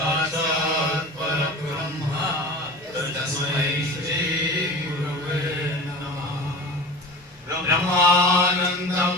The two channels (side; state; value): both; normal; correlation 0.35